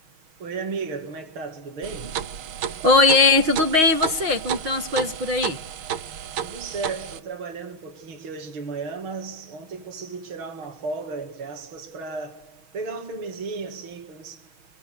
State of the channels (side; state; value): left; late; 6.3 ms